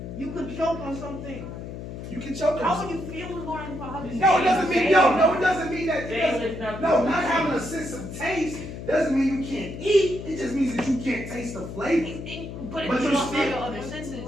You could choke on something. You can choke on How would something. you feel what's going in your mouth? No, it doesn't mean no. It doesn't mean that. Taste is not No, not having a sense of taste doesn't mean you can't eat. It just means that you can't taste the flavor. But But if you you're lost all still- your other senses,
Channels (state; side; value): noise; left; hum, 9 dB below the sound